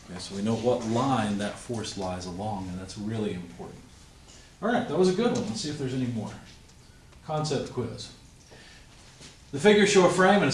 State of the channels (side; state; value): both; identical; correlation 1.00